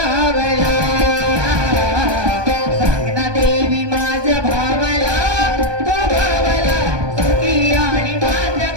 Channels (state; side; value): late; left; 1.2 ms